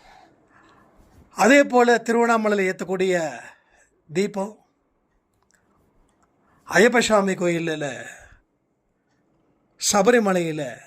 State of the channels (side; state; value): both; identical; correlation 1.00